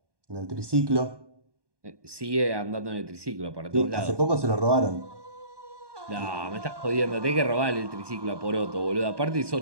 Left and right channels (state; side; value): late; left; 1.2 ms